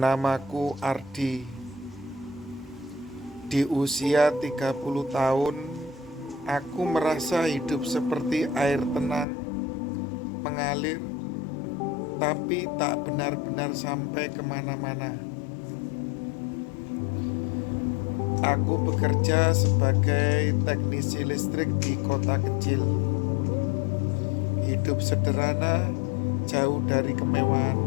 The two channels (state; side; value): drops out; right; at 9.2 s